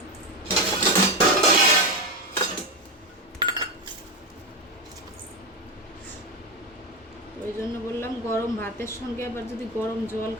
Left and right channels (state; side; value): normal; both; correlation 0.13